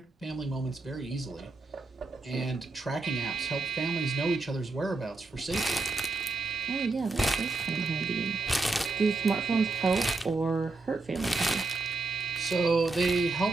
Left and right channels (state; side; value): quieter; left; 3.4 dB